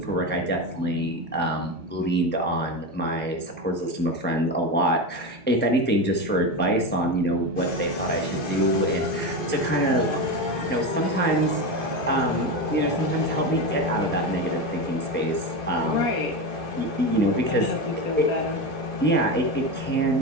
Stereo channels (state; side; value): normal; both; correlation 0.18